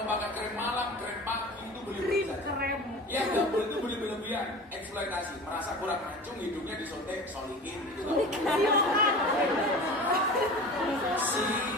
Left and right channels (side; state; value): both; normal; correlation 0.36